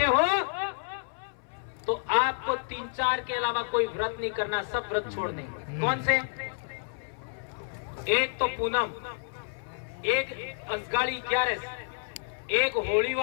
हो तो आपको 3-4 के अलावा कोई व्रत नहीं करना, सब व्रत छोड़ दें। कौन से? एक तो पूनम, एक असगाड़ी 11, एक होली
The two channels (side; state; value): right; silent; 58 dB below the other